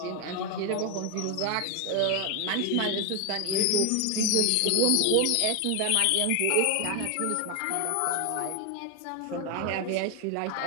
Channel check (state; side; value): different; both; correlation 0.01